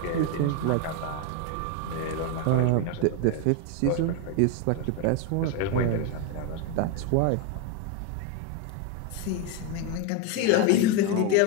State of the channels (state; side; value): different; both; correlation 0.02